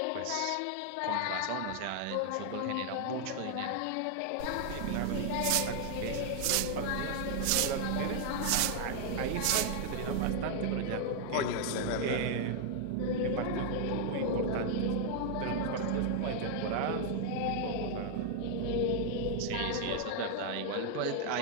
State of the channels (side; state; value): both; different; correlation 0.00